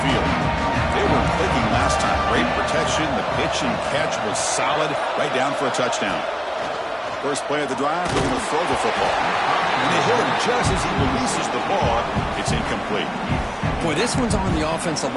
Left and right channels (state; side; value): identical; both; correlation 1.00